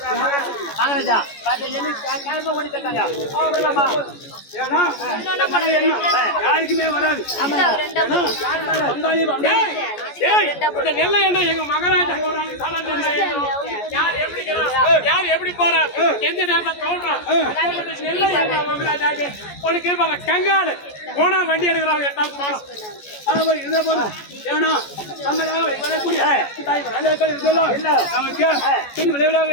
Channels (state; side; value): late; right; 14 ms